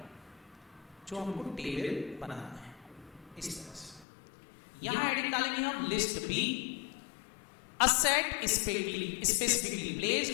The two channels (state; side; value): drops out; right; at 4.0 s